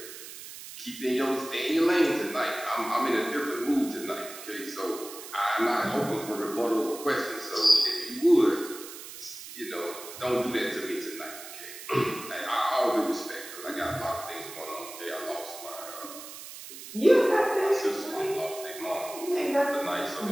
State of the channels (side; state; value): right; noise; hiss, 13 dB below the sound